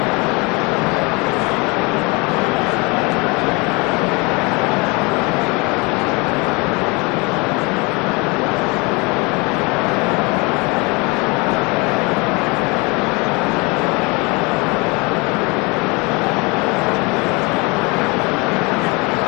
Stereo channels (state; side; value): quieter; right; 27.3 dB